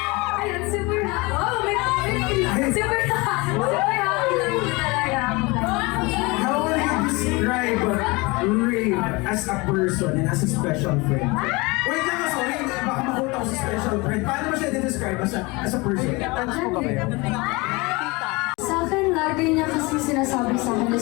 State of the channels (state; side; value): quieter; right; 25.1 dB